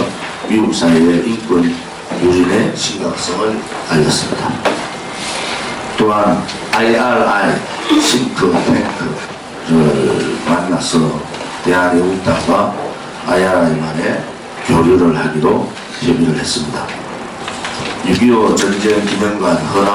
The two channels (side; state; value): both; identical; correlation 1.00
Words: 미국 사회의 인권 유린의 심각성을 알렸습니다. 또한 IRI 싱크탱크를 만나서 대한애국당과 IRI만의 교류를 하기로 협의를 했습니다. 6.25 전쟁 기념관